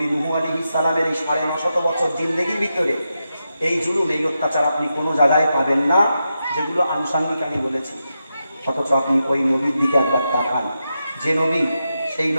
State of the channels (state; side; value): inverted; both; correlation -0.87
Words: নূহ আলাইহিস সালামের এই ৯৫০ বছর জিন্দেগির ভিতরে এই জুলুম, এই অত্যাচার আপনি কোনো জায়গায় পাবেন না, যেগুলো আনুষঙ্গিক আমি বলেছি। অথচ আপনি ওই নবীর দিকে একবার তাকান, যে নবী, সেই